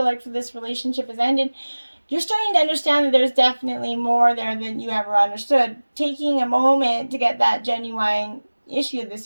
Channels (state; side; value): inverted; both; correlation -1.00